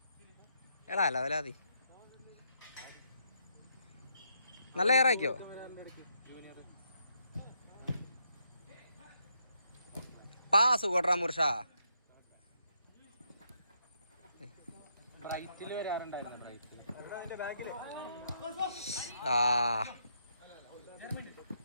എടാ അല്ല വലാതി നല്ല ഏറാക്കിയോ? പാസ് കൊട്രാ മുർഷ.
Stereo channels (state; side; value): inverted; both; correlation -0.77